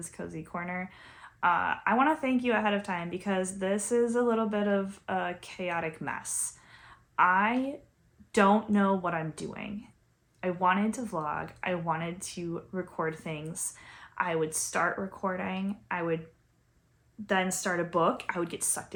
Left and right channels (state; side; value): identical; both; correlation 1.00